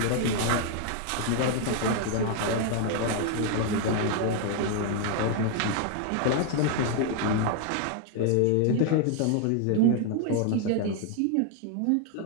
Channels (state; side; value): different; both; correlation 0.00